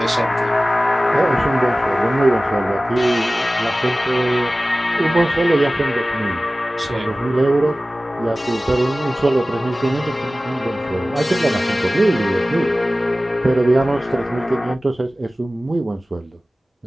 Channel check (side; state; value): both; normal; correlation 0.97